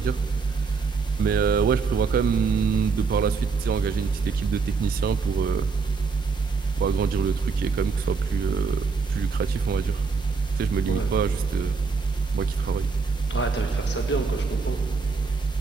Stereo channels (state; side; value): quieter; left; 4.8 dB